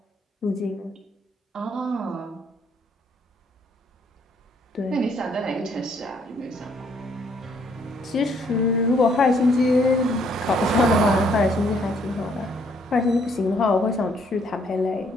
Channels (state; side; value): normal; both; correlation 0.67